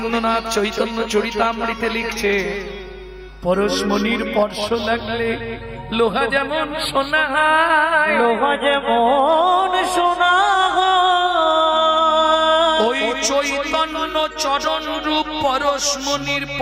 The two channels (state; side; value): identical; both; correlation 1.00